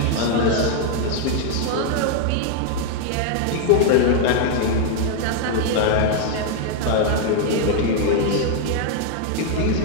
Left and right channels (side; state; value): both; different; correlation 0.00